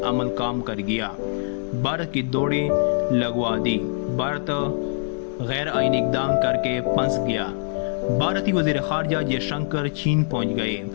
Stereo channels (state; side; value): silent; right; digital silence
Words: अमल काम कर गया। भारत की दौड़ी लगवा दी। भारत गैर आईनी इक़दाम करके फंस गया। भारतीय वज़ीर ख़ारजा जयशंकर चीन पहुंच गए।